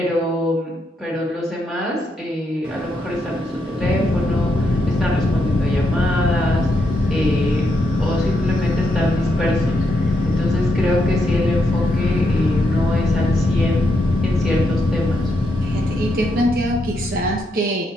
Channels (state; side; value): normal; both; correlation 0.80